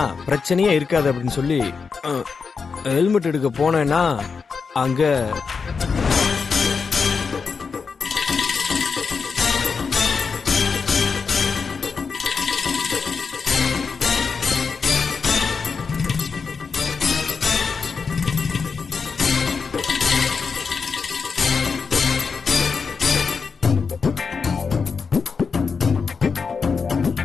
பிரச்சனையே இருக்காது அப்படின்னு சொல்லி ஹெல்மெட் எடுக்க போனேன்னா அங்க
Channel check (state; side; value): quieter; right; 5.3 dB